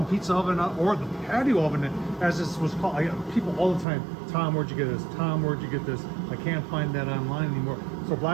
pizza oven, or the patio oven, as this was called. I get people all the time, Tom, where'd you get this? Tom, where'd you get this? I can't find that online anymore. So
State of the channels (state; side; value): drops out; left; at 3.9 s